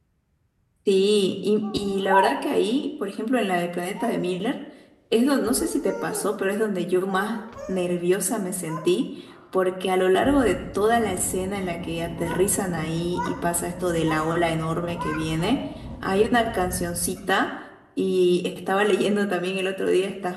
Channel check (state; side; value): identical; both; correlation 1.00